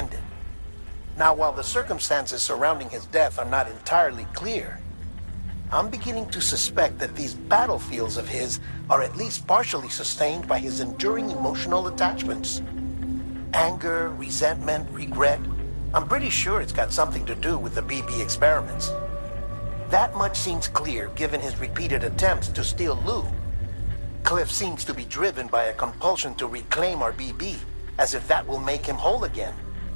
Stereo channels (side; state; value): both; inverted; correlation -1.00